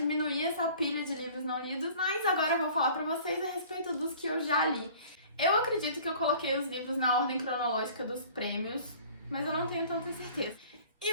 essa pilha de livros não lidos, mas agora eu vou falar pra vocês a respeito dos que eu já li. Eu acredito que eu coloquei os livros na ordem cronológica dos prêmios, mas eu não tenho tanta certeza.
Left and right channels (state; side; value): inverted; both; correlation -0.48